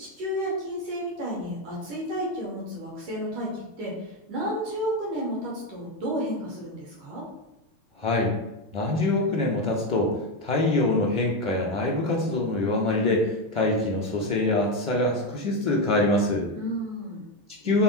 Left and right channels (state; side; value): late; left; 10 ms